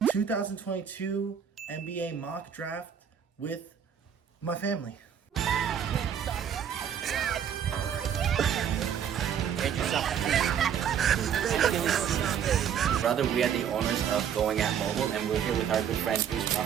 2022 NBA mock draft with my family. Brother, we are the owners of Going at Mobile, and we're here with our good friend Bruce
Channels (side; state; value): left; quieter; 8.5 dB